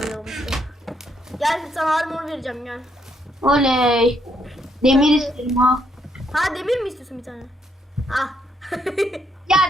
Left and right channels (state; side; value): normal; both; correlation 0.74